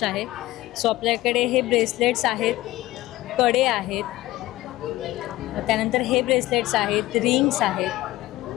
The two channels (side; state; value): right; quieter; 17.2 dB